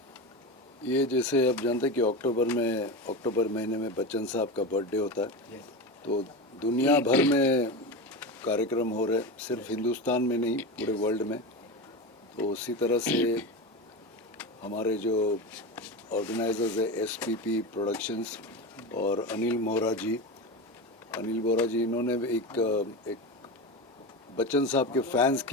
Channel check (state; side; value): normal; both; correlation 0.22